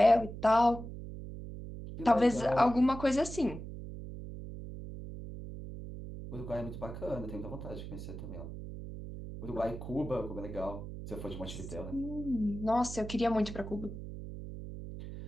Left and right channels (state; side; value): noise; right; hum, 9 dB below the sound